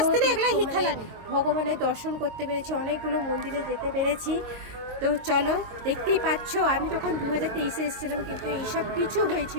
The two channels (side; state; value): left; late; 22 ms